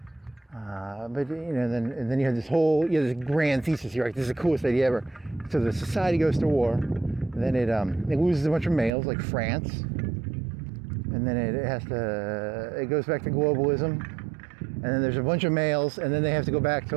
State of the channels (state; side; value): drops out; left; at 8.9 s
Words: but then you had this whole, this grand thesis here, right? This is the coolest idea ever. So the society goes to war, and then it loses a bunch of males, like France, and then it goes back to globalism, and then there's a bunch of males, and then they have to go back to